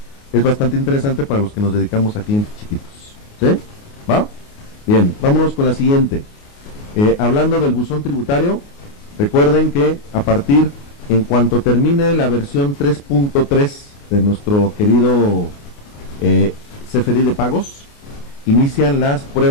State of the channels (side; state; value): right; late; 29 ms